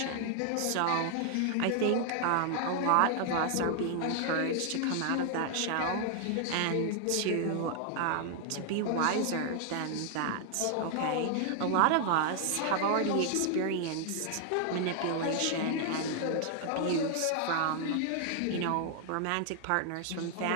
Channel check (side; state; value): both; different; correlation 0.00